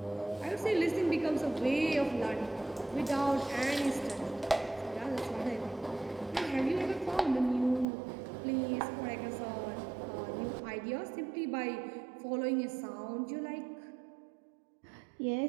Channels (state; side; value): drops out; left; at 7.9 s